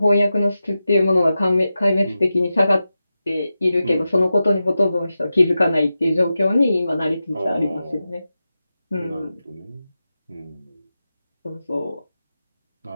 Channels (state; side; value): inverted; both; correlation -0.92